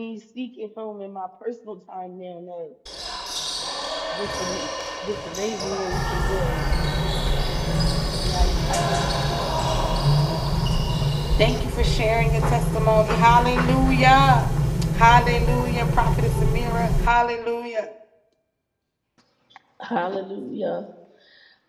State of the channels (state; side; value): identical; both; correlation 1.00